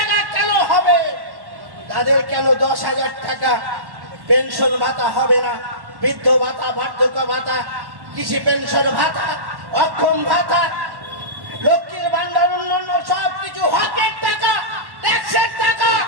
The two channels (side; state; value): left; late; 1.1 ms